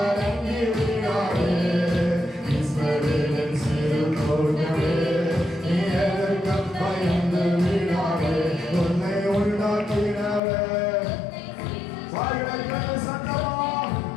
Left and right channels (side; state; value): right; drops out; at 10.4 s